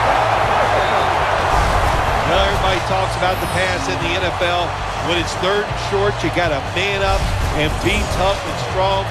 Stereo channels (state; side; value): identical; both; correlation 1.00